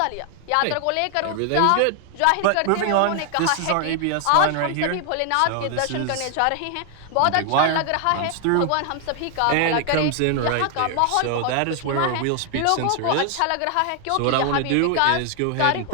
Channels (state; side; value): different; both; correlation 0.00